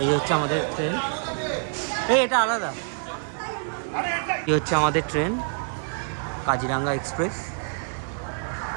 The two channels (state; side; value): silent; left; 61 dB below the other